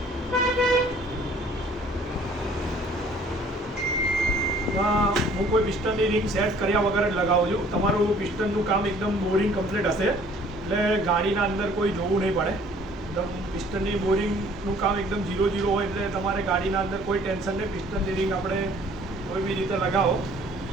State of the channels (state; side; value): normal; both; correlation 0.56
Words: હું કોઈ પિસ્ટનની રીંગ સેટ કર્યા વગર જ લગાવું છું. તમારું પિસ્ટનનું કામ એકદમ બોરિંગ કમ્પ્લીટ હશે એટલે ગાડીના અંદર કોઈ જોવું નહીં પડે. એકદમ પિસ્ટનની બોરિંગનું કામ એકદમ 0-0 હોય એટલે તમારે ગાડીના અંદર કોઈ ટેન્શન નહીં. પિસ્ટનની રીંગ આપણે કોઈ બી રીતે લગાવો,